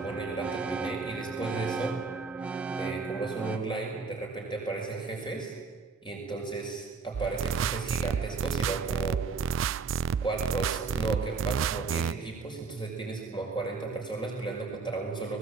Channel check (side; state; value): left; quieter; 4.7 dB